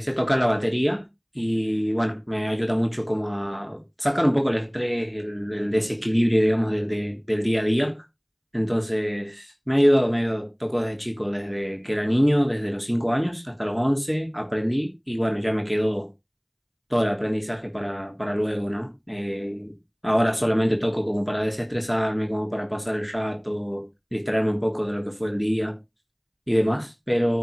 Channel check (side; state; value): both; identical; correlation 1.00